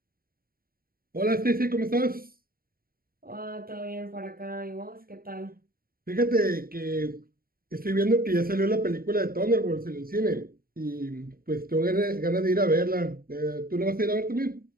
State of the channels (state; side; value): late; left; 0.43 ms